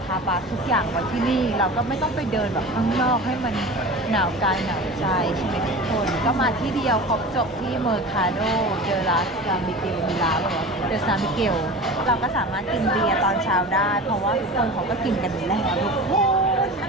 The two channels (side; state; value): both; normal; correlation 0.34